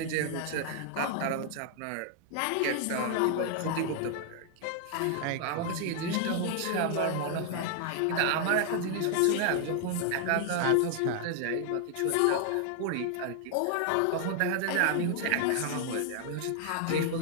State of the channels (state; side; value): different; both; correlation 0.00